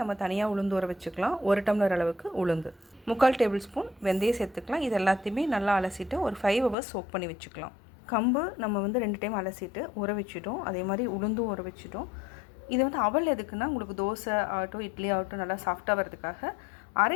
நம்ம தனியாக உளுந்து ஊற வச்சுக்கலாம். 1 டம்ளர் அளவுக்கு உளுந்து, 3/4 டேபிள் ஸ்பூன் வெந்தயம் சேர்த்துக்கலாம். இது எல்லாத்தையுமே நல்லா அலசிட்டு ஒரு 5 ஹவர்ஸ் சோக் பண்ணி வச்சுக்கலாம். கம்பு நம்ம 2 டைம் அலசிட்டு ஊற வச்சுட்டோம். அதே மாதிரி உளுந்தும் ஊற வச்சுட்டோம். இது அவல் எதுக்குன்னா, உங்களுக்கு தோசை ஆகட்டும் இட்லி ஆகட்டும் நல்லா சாஃப்டாக வர்றதுக்காக.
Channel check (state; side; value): drops out; right; at 6.8 s